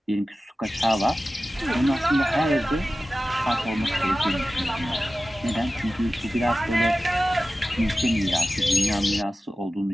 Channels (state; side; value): normal; both; correlation 0.95